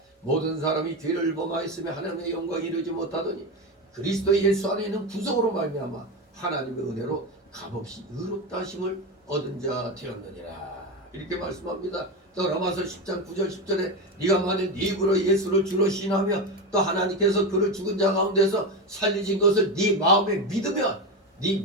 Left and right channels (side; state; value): both; normal; correlation 0.17